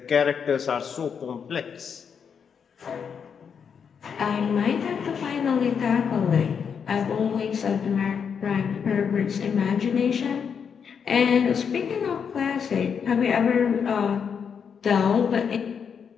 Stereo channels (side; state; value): right; quieter; 6.9 dB